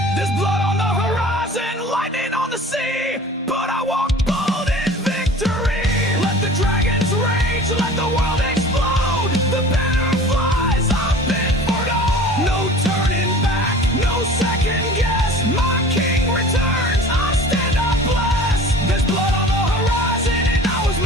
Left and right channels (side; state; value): both; normal; correlation 0.43